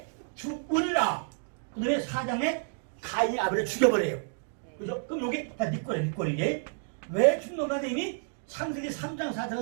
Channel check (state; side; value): silent; left; 58 dB below the other